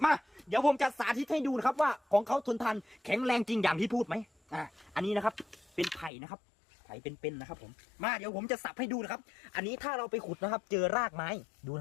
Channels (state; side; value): drops out; right; at 6.1 s